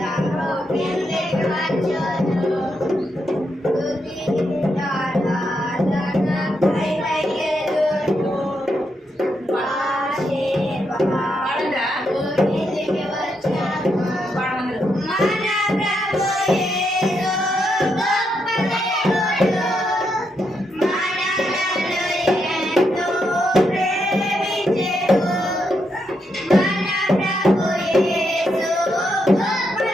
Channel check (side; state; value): both; normal; correlation 0.81